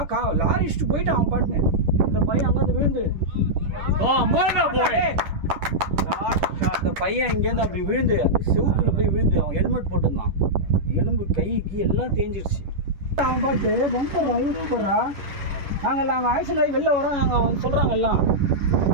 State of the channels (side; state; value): left; late; 10 ms